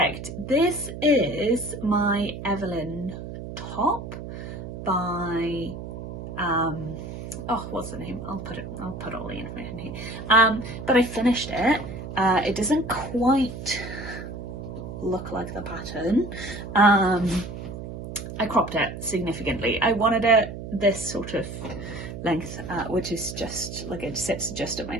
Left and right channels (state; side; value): noise; right; hum, 9 dB below the sound